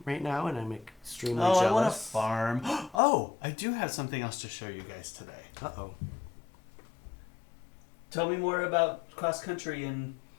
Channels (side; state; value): right; drops out; at 3.0 s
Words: right now, and I'm extremely jealous. I want a farm. Oh, I do have something else to show you guys today. Uh-oh. Tell me more about cross country and